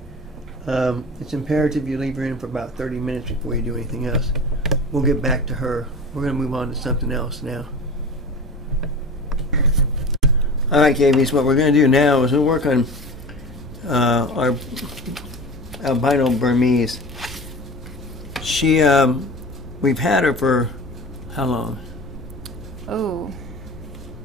her. It's imperative you leave her in for about 30 minutes before you do anything else. We'll get back to her. We're going to move on to something else now. Alright, KVs, what we're going to do now is we'll work on our albino Burmese. We've had her for how long? Oh,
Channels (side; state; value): both; normal; correlation 0.34